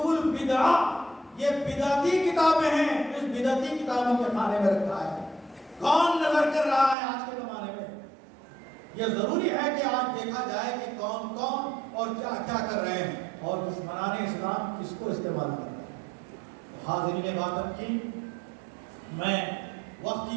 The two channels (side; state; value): left; drops out; at 7.0 s